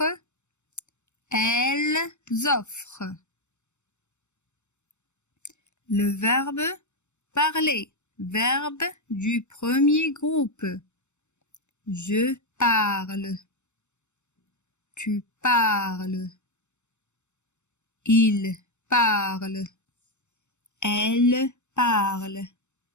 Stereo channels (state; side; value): late; right; 0.83 ms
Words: Elles offrent. Le verbe parler. Verbe du premier groupe. Je parle. Tu parles. Il parle. Elle parle.